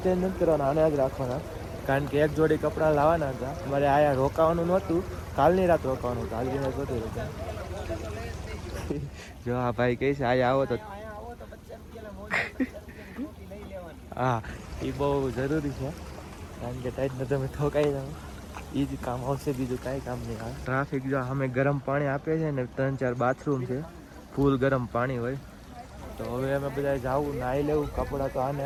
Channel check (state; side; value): identical; both; correlation 1.00